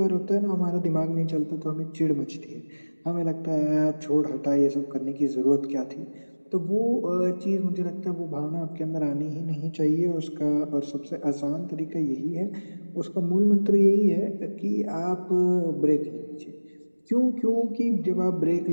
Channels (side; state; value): both; inverted; correlation -1.00